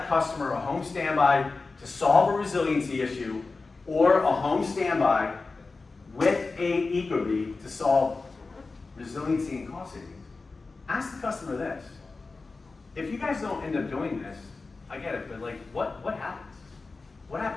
customer a home standby to solve a resiliency issue or a home standby with a Ecobee to solve resiliency and cost savings, ask the customer this. If you guys don't end up doing this, I get it, but like, what happens? What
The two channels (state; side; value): quieter; right; 3.9 dB